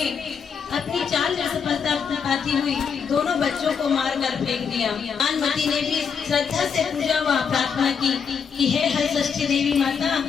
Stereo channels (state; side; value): quieter; right; 6.5 dB